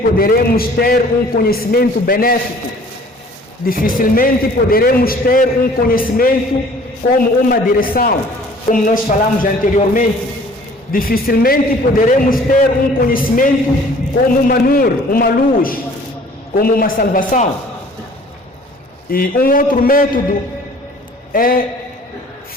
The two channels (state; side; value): normal; both; correlation 0.52